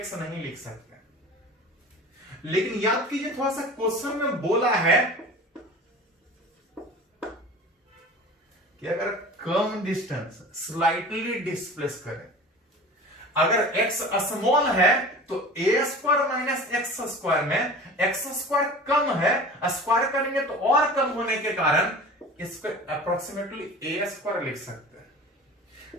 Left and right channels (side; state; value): both; normal; correlation 0.38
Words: नहीं लिख सकते। लेकिन याद कीजिए थोड़ा सा क्वेश्चन में बोला है कि अगर कम डिस्टेंस स्लाइटली डिस्प्लेस करें, अगर x स्मॉल है तो A square minus X square में एक्स स्क्वायर कम है, स्क्वायर करेंगे तो और कम होने के कारण इसको अप्रोक्सीमेटली ए स्क्वायर लिख सकते हैं।